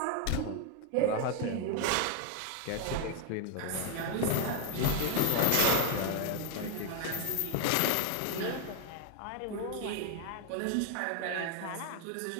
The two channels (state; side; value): different; both; correlation 0.01